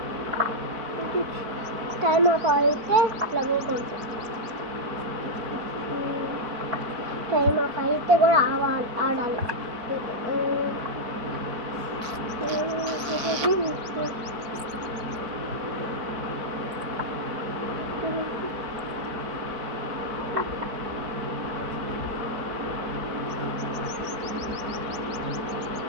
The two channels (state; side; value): late; left; 4.2 ms